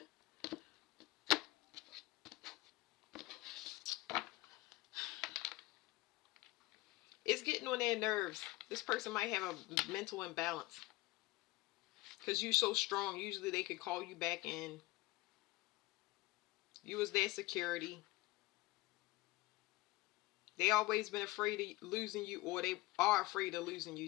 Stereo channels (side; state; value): right; quieter; 20.5 dB